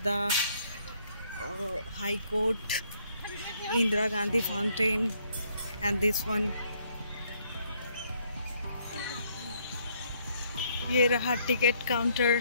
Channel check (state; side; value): inverted; both; correlation -0.68